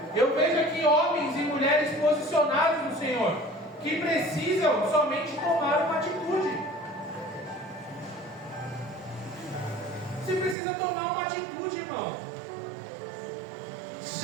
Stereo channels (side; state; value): left; drops out; at 10.6 s